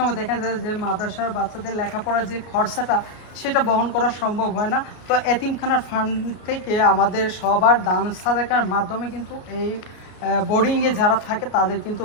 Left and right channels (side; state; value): right; late; 33 ms